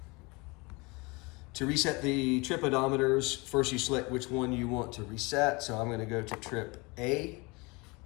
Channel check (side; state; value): right; quieter; 26.6 dB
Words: To reset the trip odometers, first you select which one you want to reset. So I'm going to go to trip A,